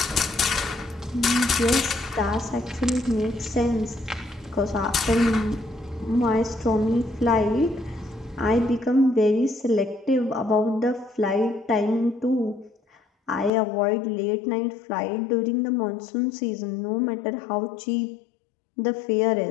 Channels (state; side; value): drops out; right; at 13.5 s